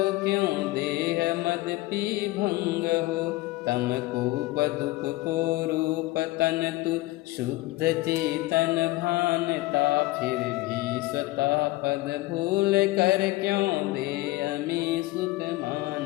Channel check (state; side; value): quieter; right; 19.4 dB